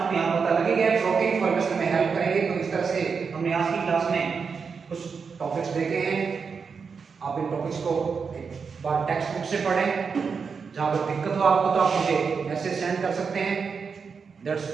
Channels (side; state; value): left; quieter; 5.6 dB